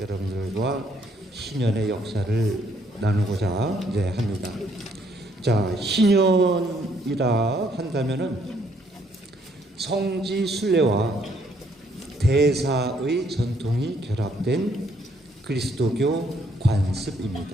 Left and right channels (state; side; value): normal; both; correlation 0.68